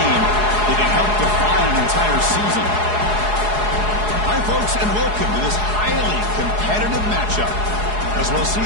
that can help define an entire season. Hi, folks, and welcome to this highly competitive matchup, as we'll see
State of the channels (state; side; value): late; left; 4.8 ms